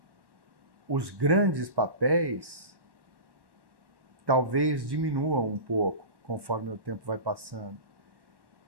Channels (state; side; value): late; left; 1.1 ms